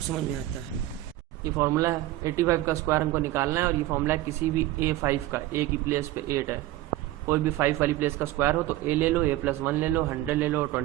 समझ में आता है। ये फॉर्मूला है, 85 का स्क्वायर हमको निकालना है और ये फॉर्मूला है किसी भी A5 का, A की प्लेस पे 8 है, कोई भी 5 वाली प्लेस का स्क्वायर हो तो A ले लो, A+1 ले लो, 100 ले लो,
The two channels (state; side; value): quieter; left; 15.7 dB